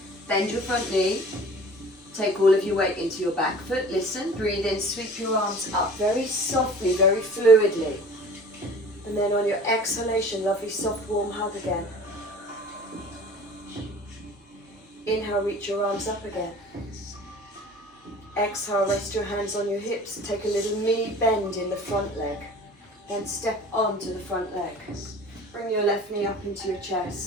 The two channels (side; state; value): both; normal; correlation 0.44